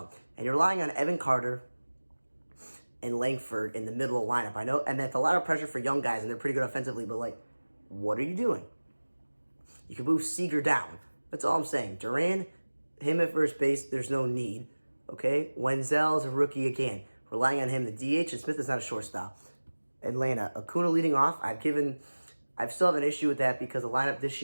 And you're relying on Evan Carter and Langford in the middle of the lineup. I know, and that's a lot of pressure for young guys, and they're pretty good offensively, but, like, what are you doing? You can move Seager down. That's all I'm saying. Duran, him at first base, there's no need. Okay? Wenzel's a rookie again. Relying on him. The DH, and Smith is not a shortstop. Atlanta, Acuna leading off. I still have an issue with that because the lineup this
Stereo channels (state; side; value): inverted; both; correlation -1.00